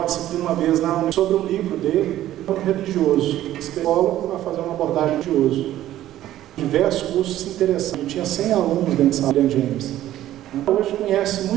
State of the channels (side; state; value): left; quieter; 13.4 dB